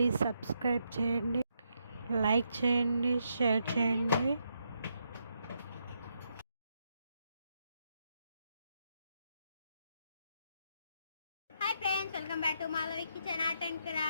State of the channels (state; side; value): inverted; both; correlation -0.79